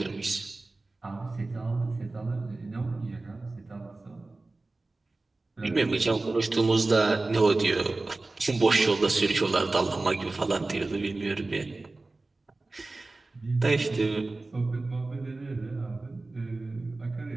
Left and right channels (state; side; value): quieter; left; 3.2 dB